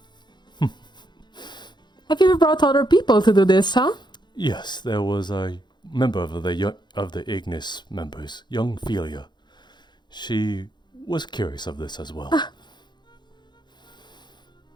Have you ever brought other people to do this, huh? Yes, there was a member of the Ignis members, young Philia. She was curious of this as well.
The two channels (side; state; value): right; late; 0.21 ms